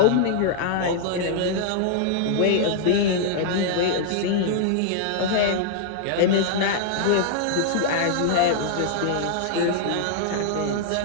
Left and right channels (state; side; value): different; both; correlation -0.01